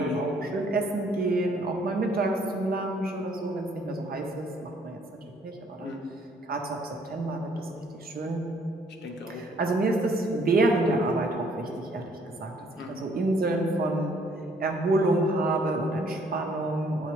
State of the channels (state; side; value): normal; both; correlation 0.64